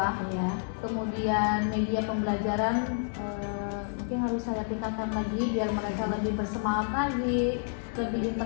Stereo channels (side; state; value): right; silent; 58 dB below the other